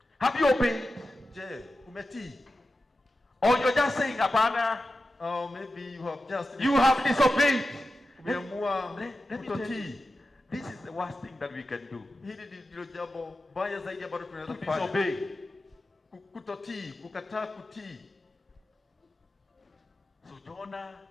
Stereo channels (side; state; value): both; normal; correlation 0.92